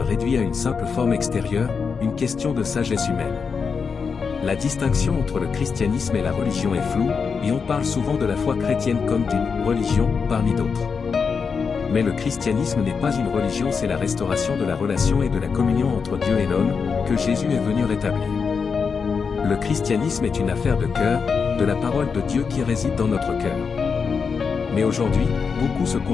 à une simple forme extérieure, une question de sagesse humaine. La distinction entre le christianisme et la religion est floue, et on parle souvent de la foi chrétienne comme d'une religion, parmi d'autres. Mais le christianisme n'est pas une religion, c'est la restauration de la relation et de la communion entre Dieu et l'homme, que Jésus est venu rétablir. Le christianisme est une affaire de cœur, de la parole de Dieu qui réside dans notre cœur. Mais aujourd'hui, beaucoup se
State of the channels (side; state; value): right; quieter; 5.6 dB